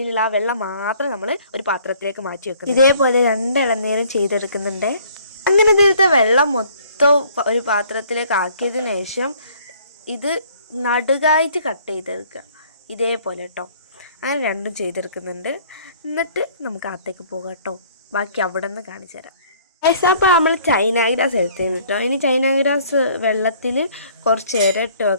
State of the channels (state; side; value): inverted; both; correlation -0.57